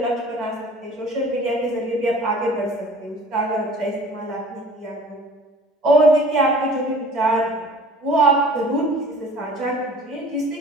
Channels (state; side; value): normal; both; correlation 0.47